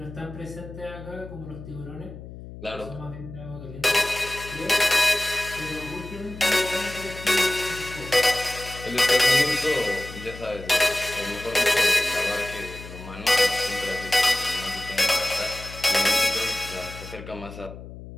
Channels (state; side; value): noise; left; hum, 14 dB below the sound